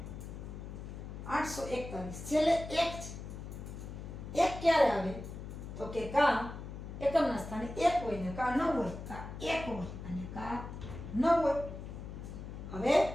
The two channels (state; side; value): noise; left; hum, 9 dB below the sound